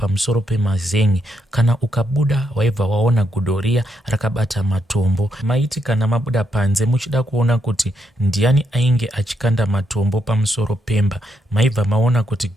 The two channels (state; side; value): normal; both; correlation 0.79